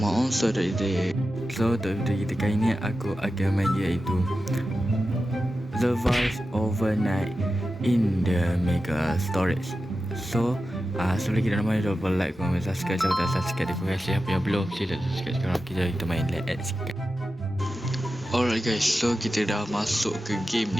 today. So untuk video kita kali ni aku akan main iaitu Survive Overnight in the Mega Storage. So sebelum kita nak main, jangan lupa like, comment, subscribe. Siapa tak subscribe, terima kasih. Siapa yang belum, sila subscribe sekarang. Kita main let's go. Alright guys, so kita dah masuk ke game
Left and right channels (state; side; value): normal; both; correlation 0.92